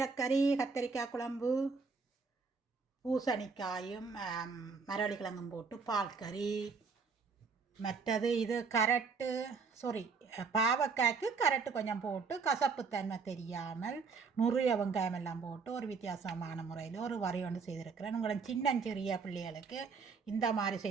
கத்தரிக்காய் குழம்பு, பூசணிக்காயும் மரவள்ளி கிழங்கும் போட்டு பால் கறி. மற்றது இது கரட்டு, சாரி, பாவக்காய்க்கு கரட்டு கொஞ்சம் போட்டு கசப்புத்தன்மை தெரியாமல் நுறிய வெங்காயம் எல்லாம் போட்டு ஒரு வித்தியாசமான முறையில் ஒரு வரி ஒன்று செய்திருக்கிறேன். உங்களை சின்னஞ்சிறிய பிள்ளைகளுக்கு இந்த மாதிரி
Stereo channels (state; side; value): quieter; left; 4.9 dB